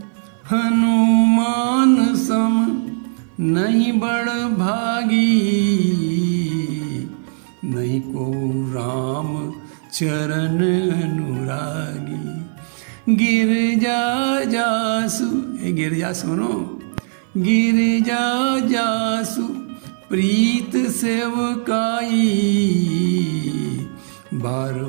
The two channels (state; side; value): silent; left; 56 dB below the other